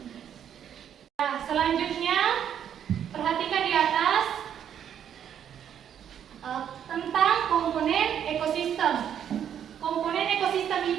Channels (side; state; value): left; quieter; 9.2 dB